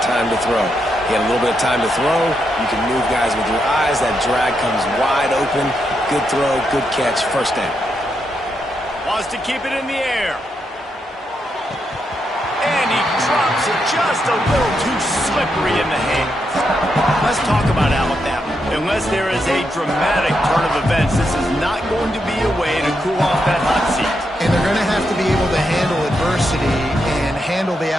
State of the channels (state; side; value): normal; both; correlation 0.82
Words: time to throw. You got a little bit of time to throw. You can move guys with your eyes. That drag comes wide open. Good throw, good catch, first down. Wants to keep it in the air. And he drops it just a little too slippery in the hands. Let's talk about Alabama. Unless there is a dramatic turn of events, this is not going to be a way to cool off that hot seat. And they're going to have to be able to handle adversity and handle the